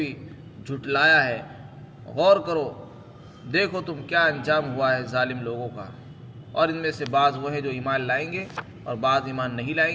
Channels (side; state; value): both; identical; correlation 1.00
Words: جھٹلایا ہے. غور کرو، دیکھو تم کیا انجام ہوا ہے ظالم لوگوں کا. اور ان میں سے بعض وہ ہیں جو ایمان لائیں گے اور بعض ایمان نہیں